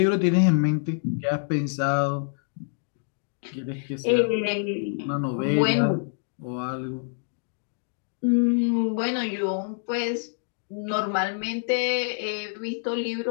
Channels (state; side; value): silent; right; digital silence